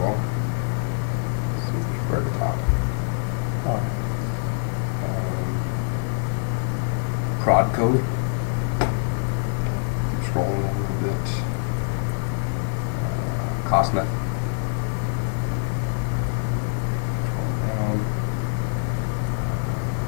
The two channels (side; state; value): right; silent; 62 dB below the other